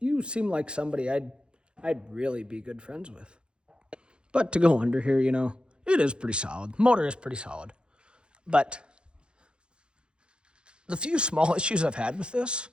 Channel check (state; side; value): late; left; 0.053 ms